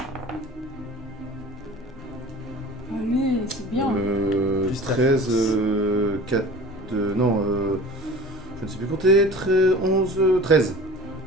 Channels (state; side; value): normal; both; correlation 0.41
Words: Allez, c'est bien. Plus ta 13, 4, non, je ne sais plus compter, 11, 13.